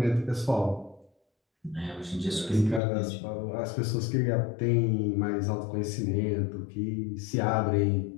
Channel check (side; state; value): right; drops out; at 2.8 s